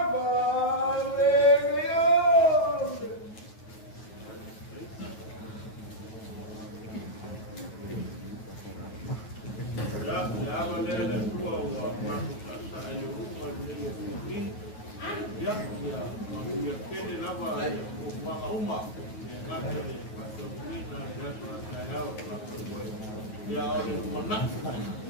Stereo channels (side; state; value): right; late; 9.3 ms